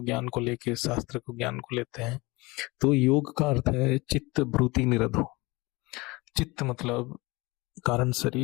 ज्ञान को लेके, शास्त्र को ज्ञान को लेते हैं। तो योग का अर्थ है चित्त वृत्ति निरोधो। चित्त मतलब कारण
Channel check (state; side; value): quieter; right; 23.6 dB